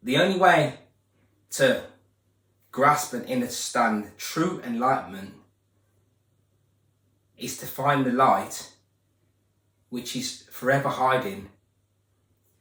the only way to grasp and understand true enlightenment is to find the light which is forever hiding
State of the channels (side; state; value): both; identical; correlation 1.00